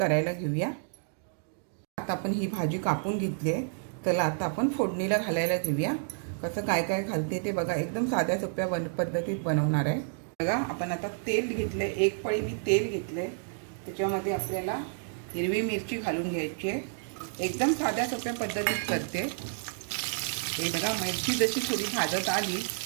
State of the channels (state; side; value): silent; left; digital silence